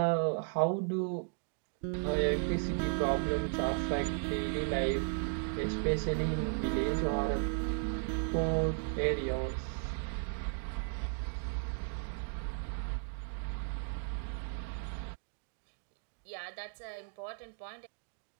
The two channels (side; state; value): left; silent; digital silence